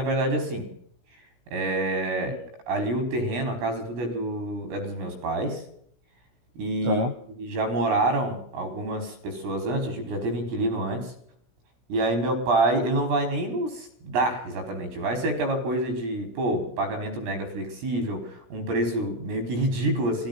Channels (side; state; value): left; late; 17 ms